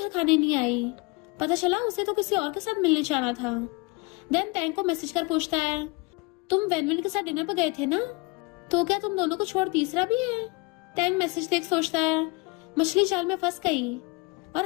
खाने नहीं आई, पता चला उसे तो किसी और के साथ मिलने जाना था। देन टैंग को मैसेज कर पूछता है तुम वैनवन के साथ डिनर पर गए थे ना, तो क्या तुम दोनों को छोड़ तीसरा भी है? टैंग मैसेज देख सोचता है मछली जाल में फंस गई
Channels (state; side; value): quieter; right; 26.8 dB